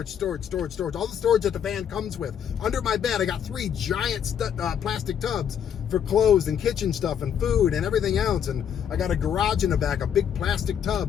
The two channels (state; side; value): quieter; right; 8.6 dB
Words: All the storage that the van comes with. Under my bed, I got 3 giant plastic tubs for clothes and kitchen stuff and food and everything else. And I got a garage in the back, a big plastic